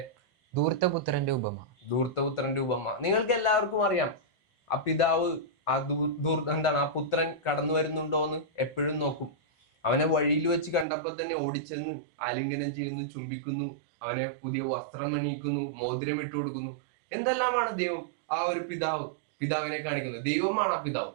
ധൂർത്തപുത്രന്റെ ഉപമ. ധൂർത്തപുത്രന്റെ ഉപമ നിങ്ങൾക്ക് എല്ലാവർക്കും അറിയാം. ആ പിതാവ് ആ പുത്രൻ കടന്നു വരുന്നുണ്ടോ എന്ന് എപ്പോഴും നോക്കും. അവനെ വഴിയിൽ വെച്ച് കണ്ടപ്പോൾ തന്നെ ഓടിച്ചെന്ന് ആലിംഗനം ചെയ്യുന്നു, ചുംബിക്കുന്നു, അവനെ പുതിയ വസ്ത്രം അണിയിക്കുന്നു, മോതിരം ഇട്ടു കൊടുക്കുന്നു. എന്തെല്ലാമാണ് ദൈവം ആ ഒരു പിതാവിനെ കാണിക്കുന്നത്. ദൈവമാണ് ആ പിതാവ്.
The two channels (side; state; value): left; drops out; at 10.9 s